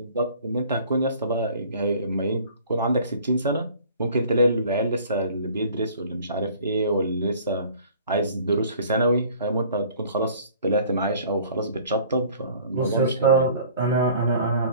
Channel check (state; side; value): inverted; both; correlation -0.50